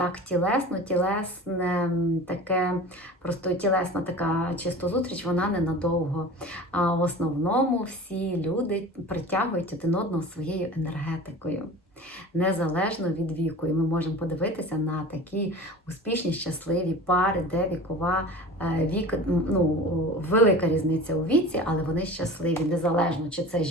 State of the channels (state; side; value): normal; both; correlation 0.37